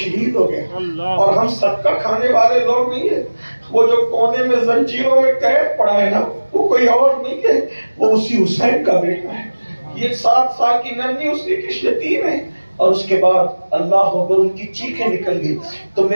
ہو گیا، اور ہم صدقہ کھانے والے لوگ نہیں ہیں، وہ جو کونے میں زنجیروں میں قید پڑا ہے نا، وہ کوئی اور نہیں ہے، وہ اسی حسین کا بیٹا ہے۔ یہ 7 سال کی ننھی اسی کی یتیم ہے، اور اس کے بعد اللہ اکبر ان کی چیخیں نکل گئی۔ تو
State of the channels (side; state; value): both; inverted; correlation -1.00